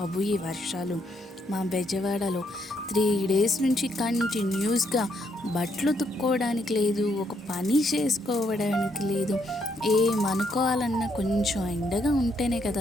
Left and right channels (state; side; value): normal; both; correlation 0.74